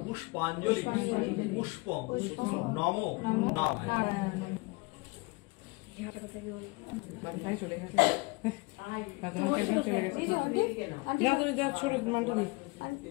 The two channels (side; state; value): right; quieter; 25.4 dB